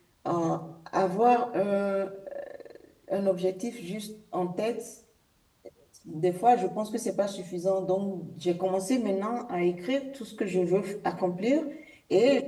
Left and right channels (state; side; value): identical; both; correlation 1.00